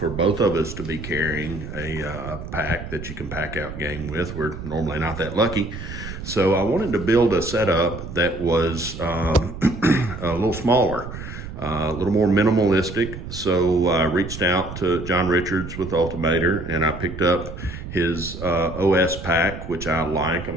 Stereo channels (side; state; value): right; noise; rumble, 10 dB below the sound